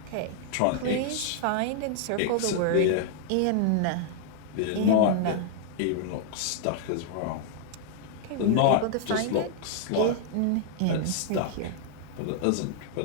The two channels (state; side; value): different; both; correlation -0.01